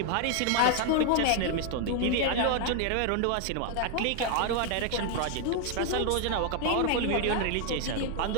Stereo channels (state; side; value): different; both; correlation 0.00